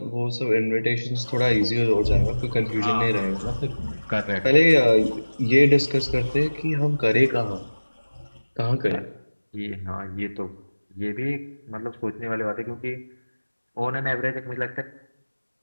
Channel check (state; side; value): inverted; both; correlation -1.00